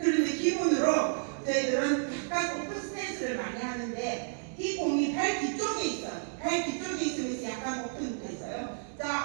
기본으로 저희들은 약간 오픈 스탠스를 많이 하는데 이 공이 발 뒤쪽에 있어요. 발 뒤쪽에 있으면서 약간 오픈돼 있어요.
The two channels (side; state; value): left; silent; digital silence